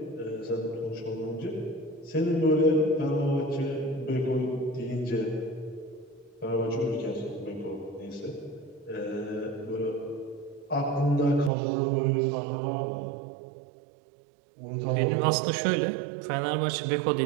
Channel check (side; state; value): left; drops out; at 11.5 s